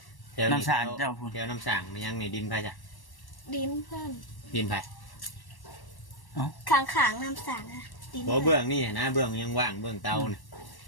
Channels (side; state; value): right; late; 1.1 ms